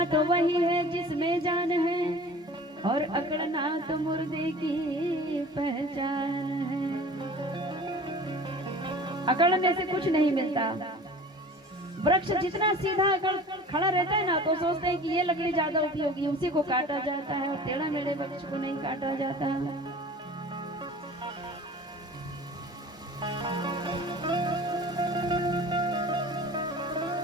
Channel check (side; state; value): both; normal; correlation 0.42